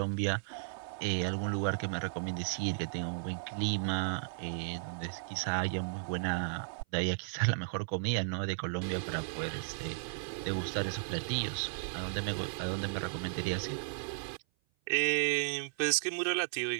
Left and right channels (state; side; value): silent; left; 54 dB below the other